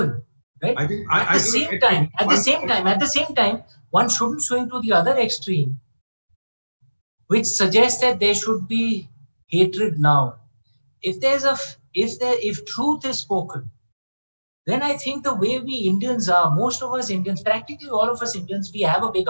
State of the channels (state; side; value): inverted; both; correlation -1.00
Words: right? At the same time, one shouldn't swing to the other extreme, which suggests that there should be hatred now. If truth is spoken, then I think the way we Indians are, most of us Indians, practically all of us Indians, we have a big